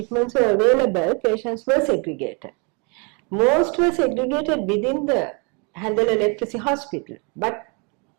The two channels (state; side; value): quieter; left; 33.3 dB